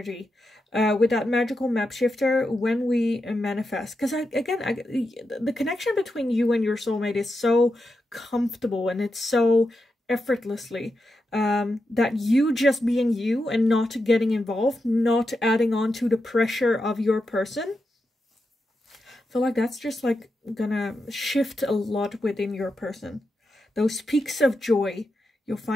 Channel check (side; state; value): both; normal; correlation 0.87